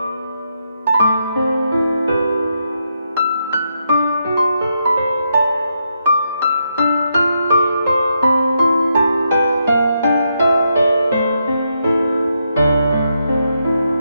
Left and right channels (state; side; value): inverted; both; correlation -0.81